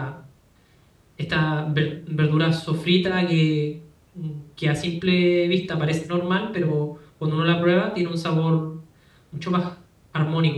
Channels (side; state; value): both; identical; correlation 1.00